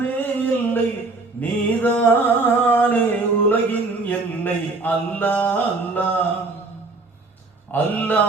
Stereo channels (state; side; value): quieter; left; 3.5 dB